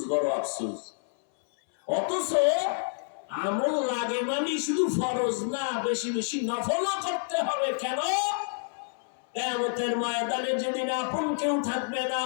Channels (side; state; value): right; silent; 59 dB below the other